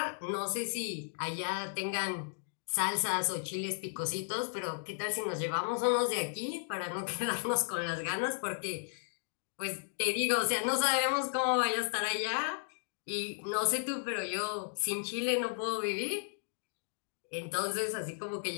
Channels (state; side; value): silent; right; digital silence